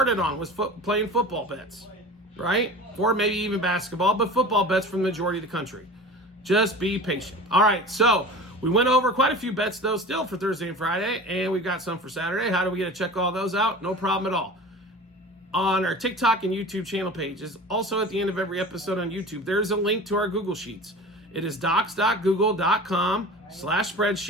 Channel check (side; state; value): both; normal; correlation 0.36